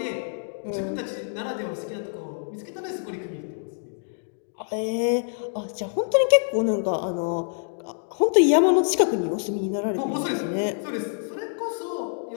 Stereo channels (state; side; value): silent; right; digital silence